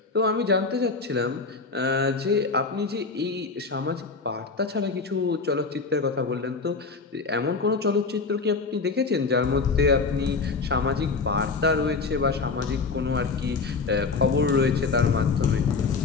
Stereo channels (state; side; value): quieter; right; 4.4 dB